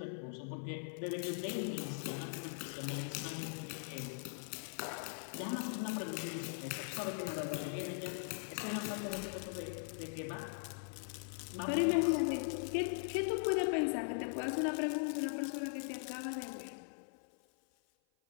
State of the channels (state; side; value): silent; right; 51 dB below the other